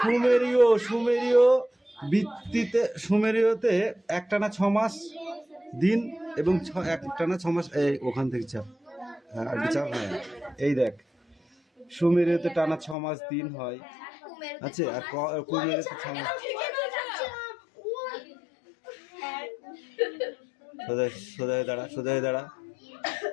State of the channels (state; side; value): drops out; right; at 13.0 s